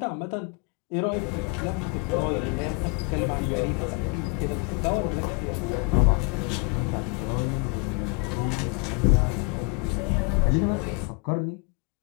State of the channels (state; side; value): quieter; right; 30.1 dB